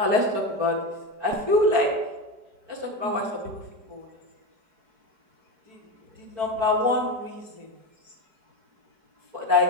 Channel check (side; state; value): left; late; 4.5 ms